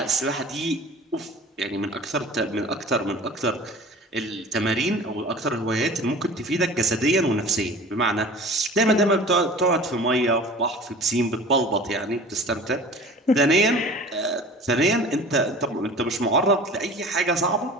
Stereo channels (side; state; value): both; normal; correlation 0.41